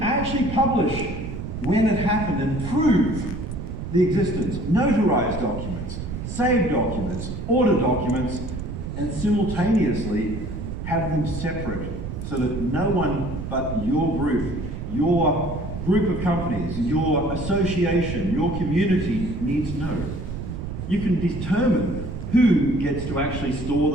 actually publish when it happened and prove the existence. Notarized documents, saved documents, order documents, and simultaneously have them separate so that no one but your group of companies, your association, your community needs to know. You can determine who gets to actually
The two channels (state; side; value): noise; right; rumble, 6 dB below the sound